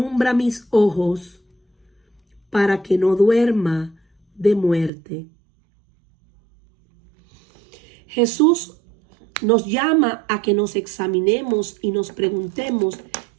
mis ojos para que no duerma de muerte. Jesús nos llama a que nos examinemos y nos preguntemos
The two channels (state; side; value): drops out; left; at 4.9 s